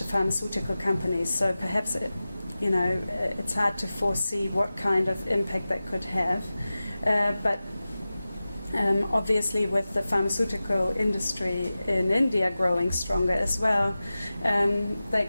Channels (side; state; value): both; inverted; correlation -0.96